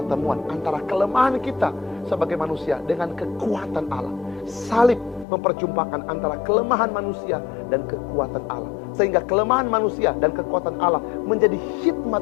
antara kelemahan kita sebagai manusia dengan kekuatan Allah. Salib memperjumpakan antara kelemahan manusia dan kekuatan Allah, sehingga kelemahan manusia dan kekuatan Allah menjadi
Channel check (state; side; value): drops out; right; at 5.2 s